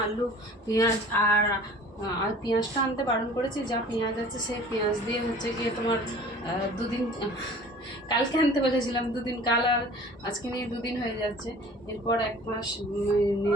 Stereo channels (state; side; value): normal; both; correlation 0.47